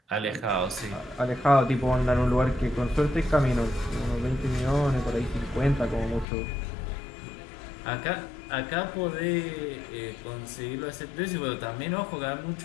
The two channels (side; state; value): right; drops out; at 6.2 s